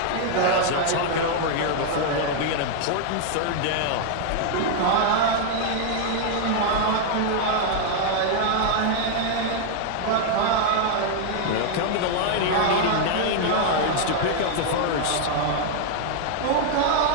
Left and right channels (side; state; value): both; different; correlation 0.00